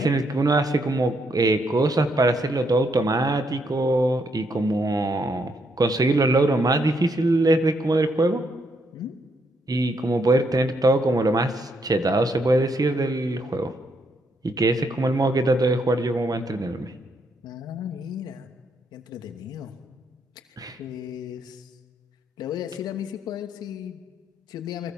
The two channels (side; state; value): both; normal; correlation 0.76